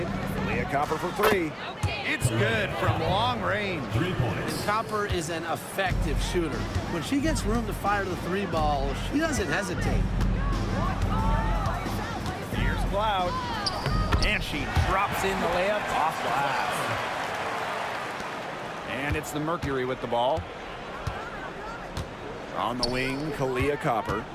Leah Copper for three. It's good from long range. 3 points. And Copper is an effective shooter. When she gets room to fire the three ball, she doesn't hesitate. Here's Cloud. And she drops in the layup off glass. And it's the Mercury with the ball. On the wing, Kalia Copper.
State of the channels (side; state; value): both; identical; correlation 1.00